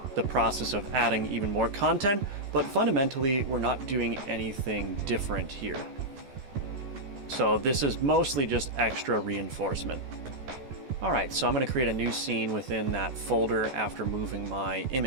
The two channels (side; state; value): left; late; 14 ms